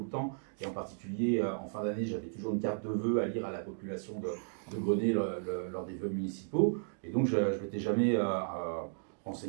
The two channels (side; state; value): left; silent; digital silence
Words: le temps, et en particulier en fin d'année, j'avais toujours une carte de vœux à lire à la population de Grenay lors des vœux municipaux. Et donc, je ne m'étais jamais